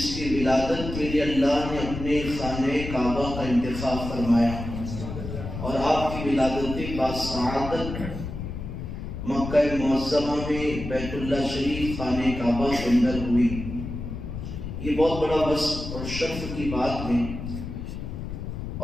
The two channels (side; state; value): left; noise; rumble, 7 dB below the sound